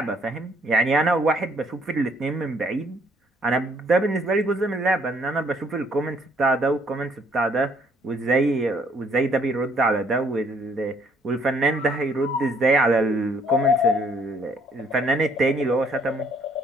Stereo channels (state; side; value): normal; both; correlation 0.65